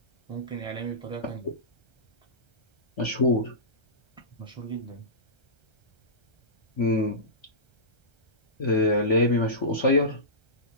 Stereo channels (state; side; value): late; right; 1.3 ms